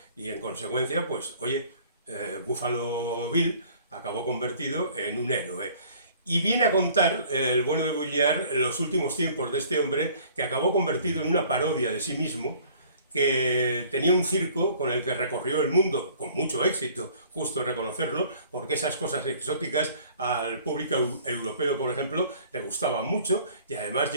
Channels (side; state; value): both; inverted; correlation -0.53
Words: y en consecuencia, pues, oye, Buffalo Bill acabó convertido en un héroe. Y viene a contar el bueno de Bulliard los últimos tiempos de este hombre que acabó convertido en una parodia de sí mismo, que tenía un circo con el que recorrió el mundo con mucho éxito, justo reconocerlo, porque esas cosas exóticas al público europeo, por ejemplo, le gustaban mucho y además